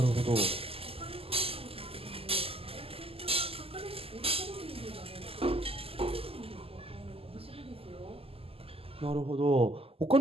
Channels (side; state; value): left; late; 0.28 ms